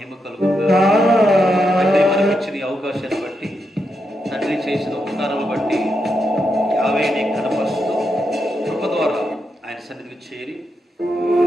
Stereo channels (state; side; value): normal; both; correlation 0.84